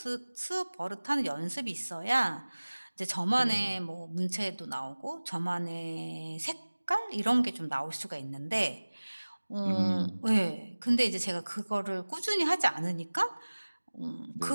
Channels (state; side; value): inverted; both; correlation -1.00